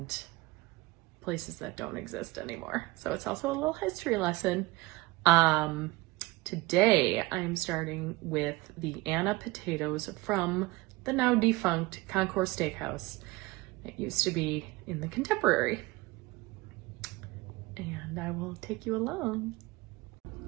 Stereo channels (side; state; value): left; quieter; 21.9 dB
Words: places that don't exist anymore. So it's also a little history lesson. Today I'm starting with the Anna potatoes from the now defunct Concourse Steakhouse. It used to be in the Contemporary. And I will take you along.